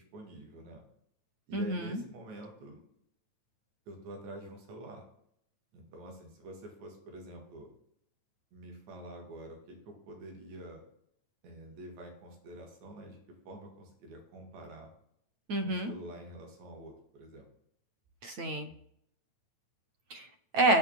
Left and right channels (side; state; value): left; late; 9.1 ms